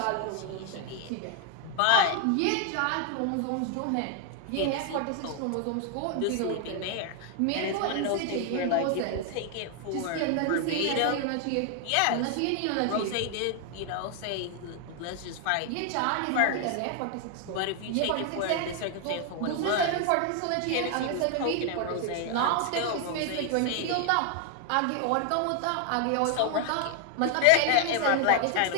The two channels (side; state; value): both; different; correlation 0.00